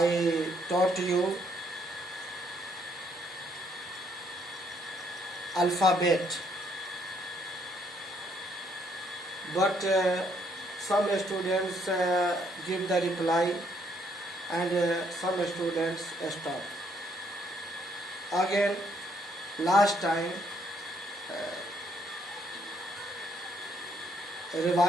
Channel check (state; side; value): normal; both; correlation 0.69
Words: taught you alphabet, but some students give the reply and some students stop. Again, last time